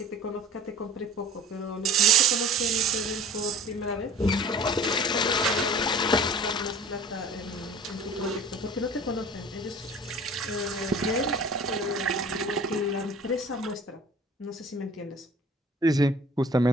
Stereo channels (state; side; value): normal; both; correlation 0.45